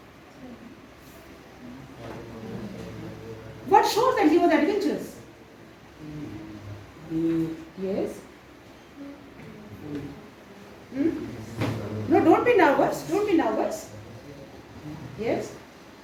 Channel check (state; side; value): identical; both; correlation 1.00